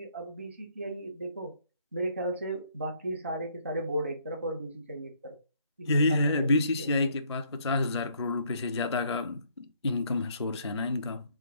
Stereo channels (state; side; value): inverted; both; correlation -0.66